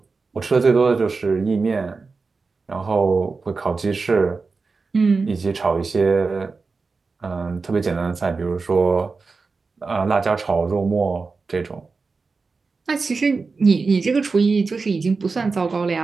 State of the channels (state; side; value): quieter; left; 4.3 dB